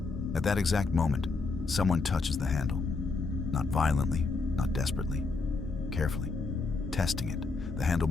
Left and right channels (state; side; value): quieter; right; 4.0 dB